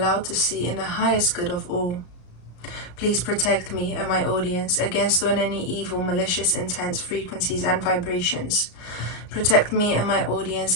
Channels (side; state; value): right; late; 34 ms